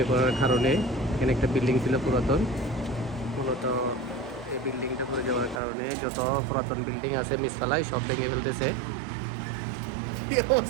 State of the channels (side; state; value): left; drops out; at 5.6 s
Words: পড়ার কারণে এখানে একটা বিল্ডিং ছিল পুরাতন। মূলত এই বিল্ডিংটা পড়ে যাওয়ার কারণে যত পুরাতন বিল্ডিং আছে মিসফালায় সব ভেঙে ফেলতেছে। কি